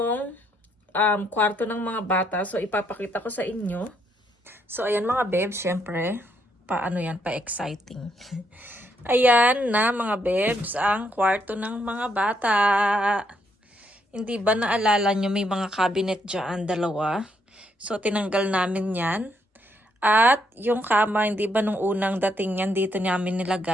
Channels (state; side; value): normal; both; correlation 0.75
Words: kwarto ng mga bata. So, ipapakita ko sa inyo. So, ayan mga bebs, syempre. Pa-exciting. Ayan na mga bebs, ang kwarto ng mga bata. Hindi ba naalala nyo may mga cabinet dyan, dalawa? So, tinanggal namin yan. At yung kama, hindi ba nung unang dating yan, dito namin